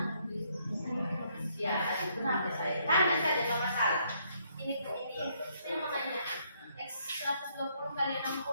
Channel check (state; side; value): inverted; both; correlation -0.71